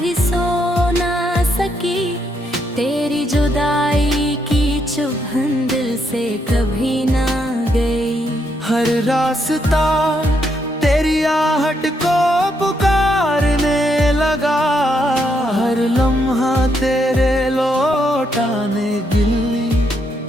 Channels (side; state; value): both; normal; correlation 0.77